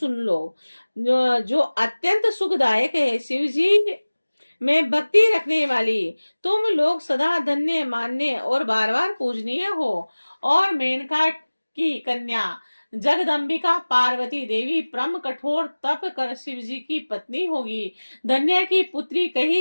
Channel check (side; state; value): both; inverted; correlation -1.00